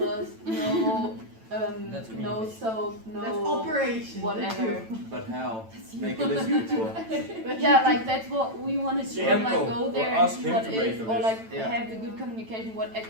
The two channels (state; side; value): late; left; 9.0 ms